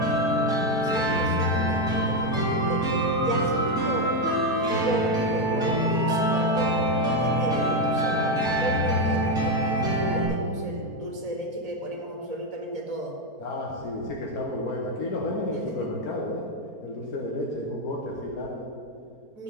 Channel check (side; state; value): right; late; 4.4 ms